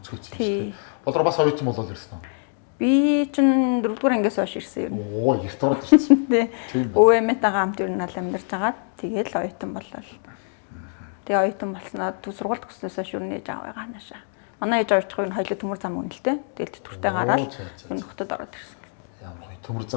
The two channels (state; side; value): silent; right; 57 dB below the other